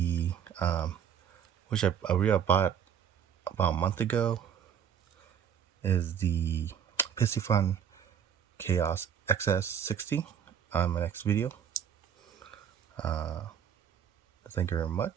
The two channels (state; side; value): quieter; left; 8.4 dB